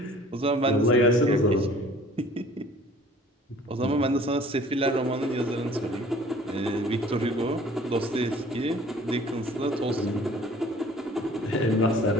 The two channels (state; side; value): normal; both; correlation 0.51